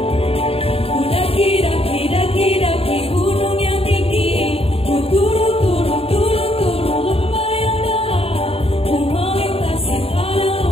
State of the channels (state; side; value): late; right; 0.28 ms